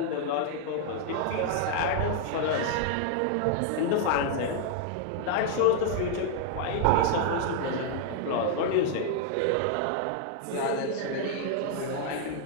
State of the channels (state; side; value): different; both; correlation 0.00